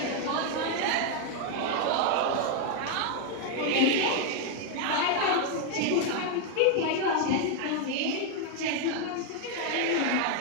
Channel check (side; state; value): both; different; correlation 0.01